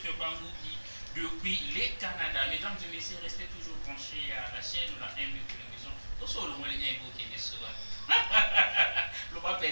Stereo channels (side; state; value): both; inverted; correlation -1.00